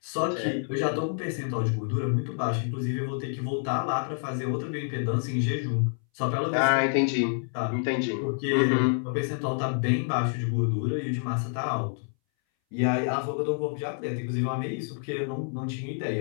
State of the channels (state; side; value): silent; right; 59 dB below the other